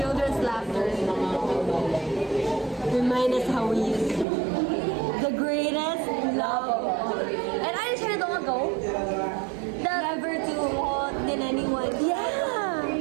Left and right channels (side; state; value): left; drops out; at 4.2 s